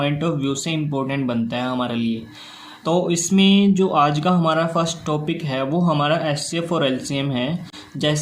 ऑफ व्यू से इम्पोर्टेंट बनता है हमारे लिए। तो इसमें जो आज का हमारा फर्स्ट टॉपिक है वो हमारा एचसीएफ और एलसीएम है।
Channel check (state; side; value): identical; both; correlation 1.00